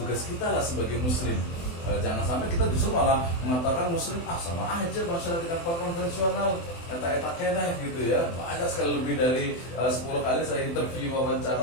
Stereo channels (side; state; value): right; late; 24 ms